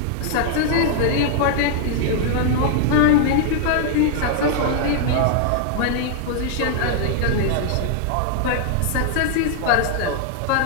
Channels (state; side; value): different; both; correlation -0.01